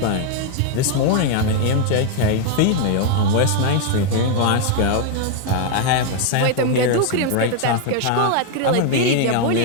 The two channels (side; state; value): both; different; correlation 0.01